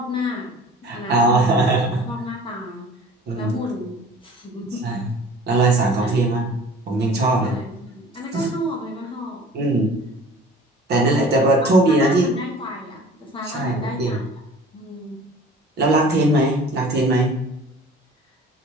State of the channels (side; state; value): both; normal; correlation 0.45